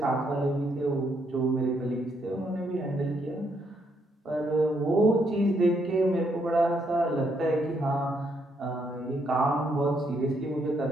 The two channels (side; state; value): both; normal; correlation 0.74